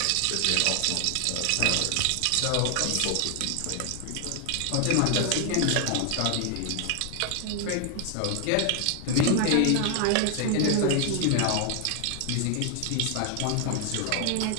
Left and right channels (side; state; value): both; different; correlation 0.00